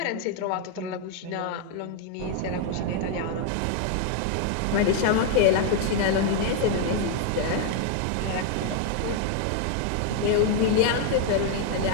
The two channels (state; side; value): different; both; correlation 0.00